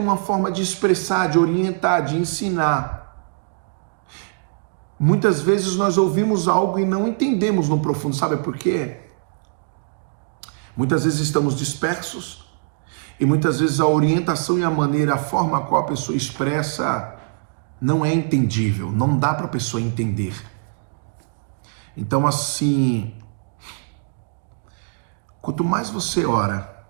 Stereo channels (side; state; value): left; silent; digital silence